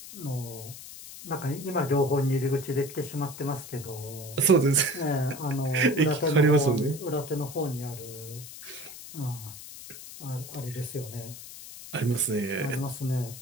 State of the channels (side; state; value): left; noise; hiss, 13 dB below the sound